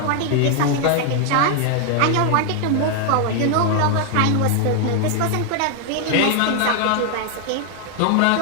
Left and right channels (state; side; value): different; both; correlation 0.00